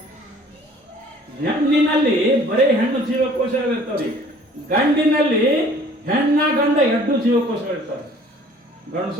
ಹೆಣ್ಣಿನಲ್ಲಿ ಬರೀ ಹೆಣ್ಣು ಜೀವಕೋಶಗಳು ಇರ್ತಾವ್ರಿ. ಗಂಡಿನಲ್ಲಿ ಹೆಣ್ಣ ಗಂಡ ಎರಡು ಜೀವಕೋಶಗಳು ಇರ್ತಾವೆ.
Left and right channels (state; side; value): normal; both; correlation 0.53